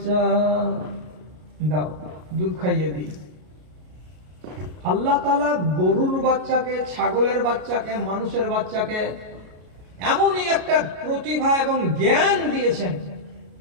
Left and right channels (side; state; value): left; late; 33 ms